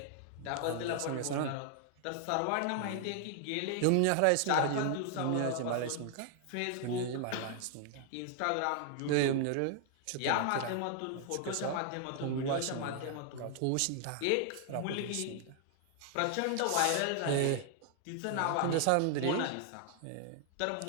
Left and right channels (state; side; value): different; both; correlation 0.00